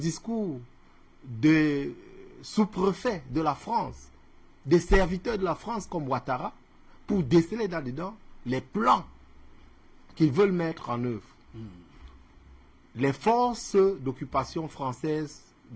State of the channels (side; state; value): both; identical; correlation 1.00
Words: des sous-préfets de la France, des serviteurs de la France comme Ouattara, pour déceler là-dedans les plans qu'ils veulent mettre en œuvre. Les forces d'occupation françaises